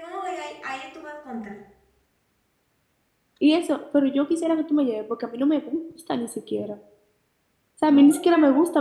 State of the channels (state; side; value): identical; both; correlation 1.00